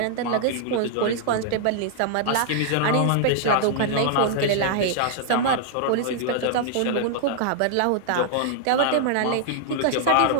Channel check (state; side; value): different; both; correlation -0.01